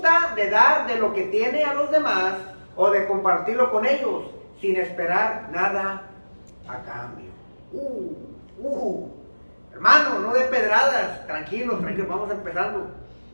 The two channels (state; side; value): inverted; both; correlation -1.00